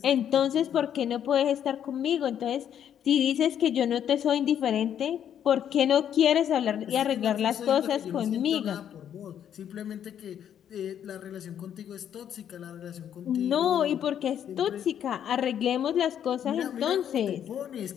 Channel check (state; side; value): quieter; right; 9.5 dB